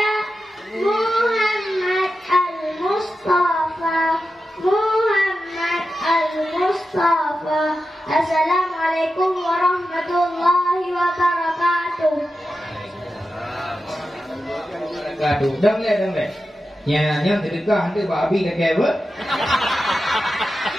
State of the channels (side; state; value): both; normal; correlation 0.91